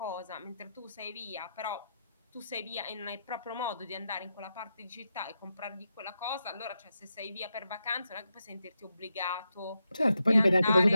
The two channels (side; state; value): both; inverted; correlation -0.86